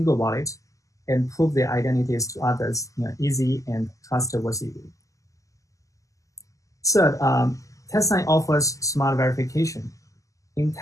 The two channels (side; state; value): right; late; 0.16 ms